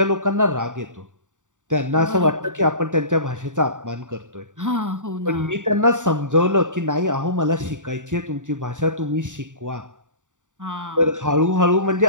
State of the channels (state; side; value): late; left; 0.86 ms